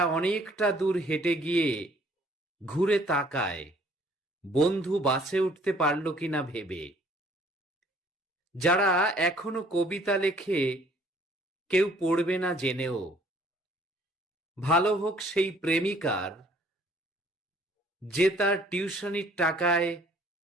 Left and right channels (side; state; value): both; normal; correlation 0.59